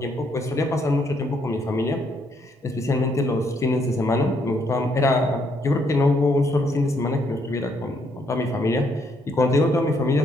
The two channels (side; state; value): both; normal; correlation 0.72